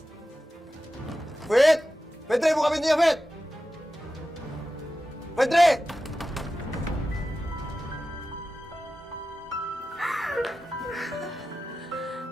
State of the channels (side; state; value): both; normal; correlation 0.93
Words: Fit! Fitri, buka pintunya, Fit! Fitri!